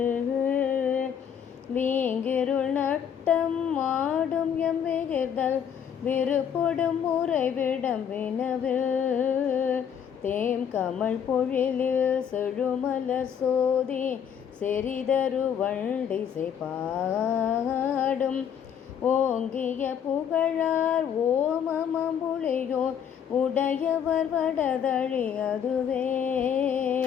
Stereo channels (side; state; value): right; quieter; 8.3 dB